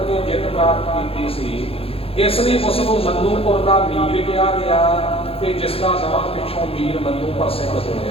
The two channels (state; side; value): late; right; 0.28 ms